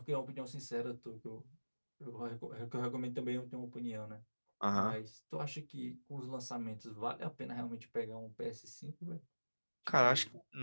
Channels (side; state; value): both; inverted; correlation -1.00